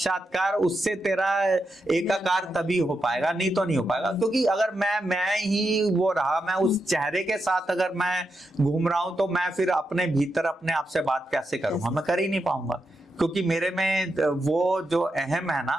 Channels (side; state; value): both; normal; correlation 0.86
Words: उससे तेरा एकाकार तभी हो पाएगा, नहीं तो नहीं हो पाएगा। क्योंकि अगर मैं ही वो रहा, मैं उस चेहरे के साथ अगर मैं घूम रहा हूं, तो मैं फिर अपने भीतर अपने आप से बात कैसे करूंगा? मैं कर ही नहीं पाऊंगा, क्योंकि मेरे में वो जो अहम है